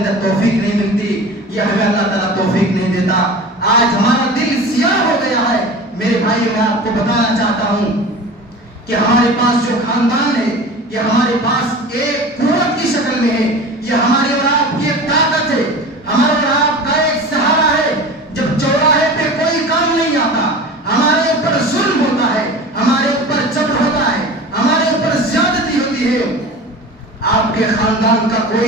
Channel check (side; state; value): both; normal; correlation 0.35